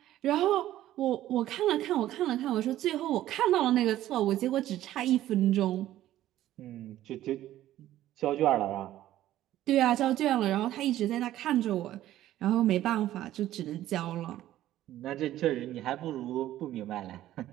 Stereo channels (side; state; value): left; quieter; 13.6 dB